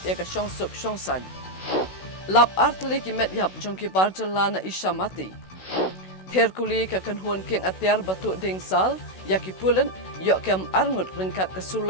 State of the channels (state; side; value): late; right; 16 ms